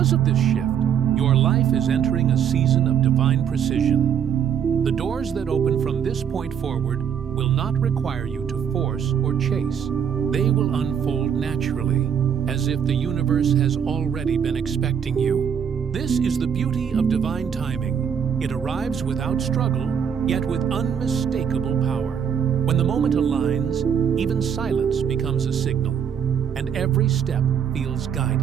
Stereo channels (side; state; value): left; quieter; 8.0 dB